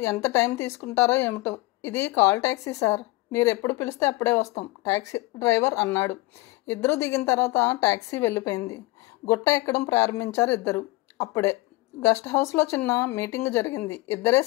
ఎంత టైం తీసుకుంటారో ఏమిటో. ఇది కాల్ ట్యాక్సీ సార్, మీరు ఎప్పుడు పిలిస్తే అప్పుడే వస్తాం, ట్యాక్సీ డ్రైవర్ అన్నాడు. ఇద్దరు దిగిన తర్వాత ట్యాక్సీ వెళ్ళిపోయింది. గుట్ట ఎక్కడం ప్రారంభించారు ఇద్దరు. అప్పుడే గెస్ట్ హౌస్లో చిన్న మీటింగ్ జరిగింది. ఇద్దరే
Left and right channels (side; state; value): right; quieter; 20.6 dB